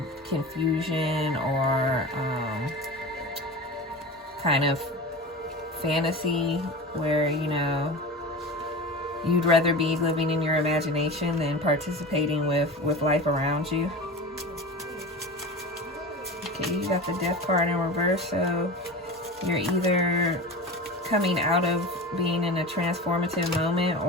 confusion or kind of fantasy where, you know, you'd rather be living in your imagination than participating with life around you. Okay, you got the Death card in reverse, so you're either coming out of being in a transformative moment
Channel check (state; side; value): normal; both; correlation 0.30